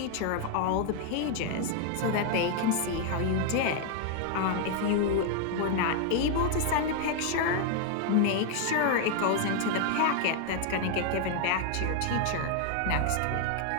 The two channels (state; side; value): different; both; correlation 0.00